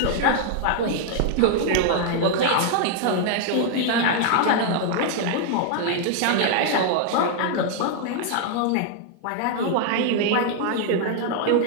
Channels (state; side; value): different; both; correlation 0.00